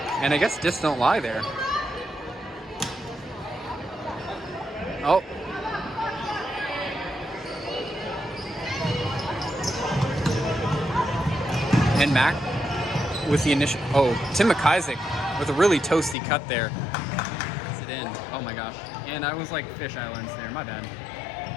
and I guess discs don't lie there. Oh. And Mac with the initial, Tim McIsaac with a really toasty cut there. Gets it in. Oh my gosh. And I was like fish islands there, my bad.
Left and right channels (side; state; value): right; drops out; at 16.2 s